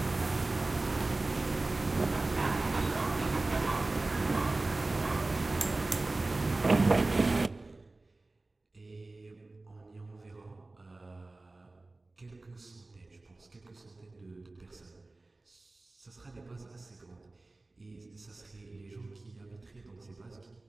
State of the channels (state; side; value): quieter; left; 3.1 dB